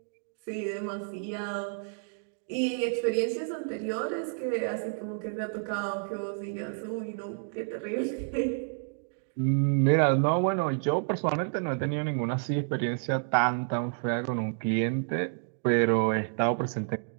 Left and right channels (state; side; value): silent; left; digital silence